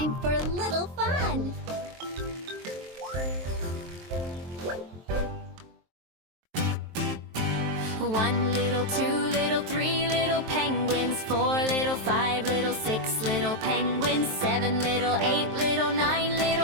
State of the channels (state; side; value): late; left; 23 ms